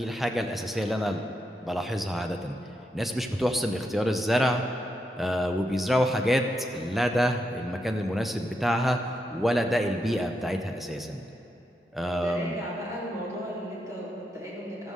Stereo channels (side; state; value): both; normal; correlation 0.83